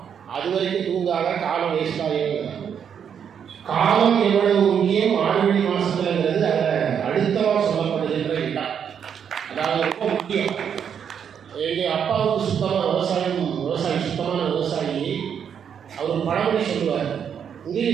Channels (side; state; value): left; quieter; 7.9 dB